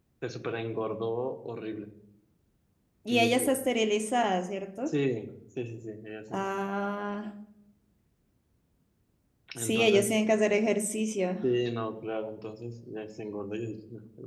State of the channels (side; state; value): both; identical; correlation 1.00